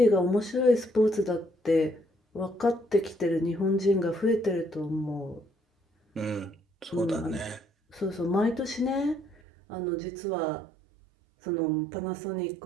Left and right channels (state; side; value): drops out; left; at 9.3 s